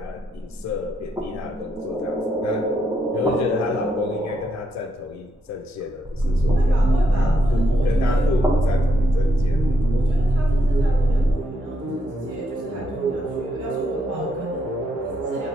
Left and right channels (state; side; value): normal; both; correlation 0.78